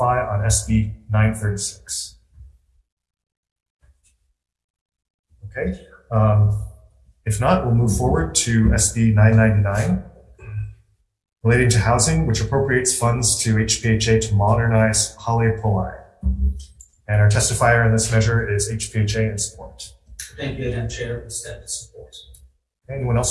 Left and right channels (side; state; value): both; identical; correlation 1.00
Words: on SB 936? Okay. If not, we'll move forward to SB 999, relating to housing, which appropriates funds to HPHA to modernize HOU. And our testifier in this measure is HPHA in support. Thank you again, Chair. We stand in support. Anyone